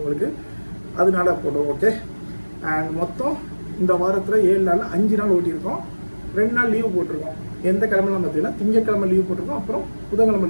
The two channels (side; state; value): both; inverted; correlation -1.00